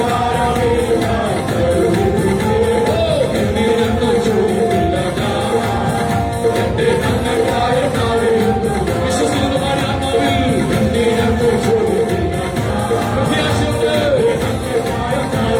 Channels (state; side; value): identical; both; correlation 1.00